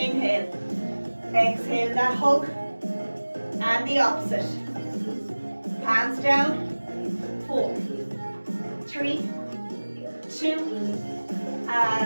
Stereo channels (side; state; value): both; inverted; correlation -1.00